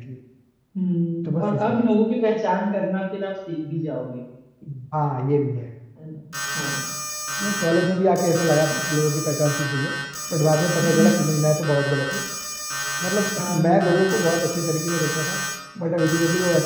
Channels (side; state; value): both; identical; correlation 1.00